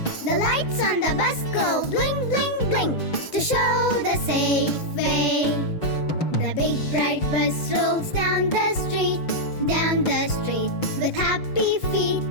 The lights on the bus go blink, blink, blink to show the safe way. The big bright bus rolls down the street with happy feet.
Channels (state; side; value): late; right; 6.3 ms